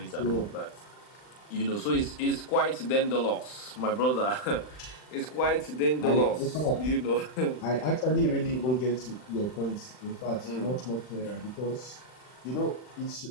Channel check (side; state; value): right; late; 39 ms